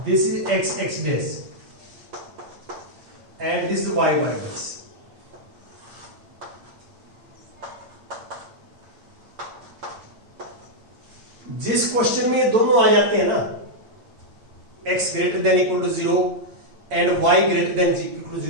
is X X dash and this is Y Y dash. जिस क्वेश्चन में ये दोनों आ जाते हैं ना, x greater than equal to 0 and y greater than equal to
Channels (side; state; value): left; late; 8.7 ms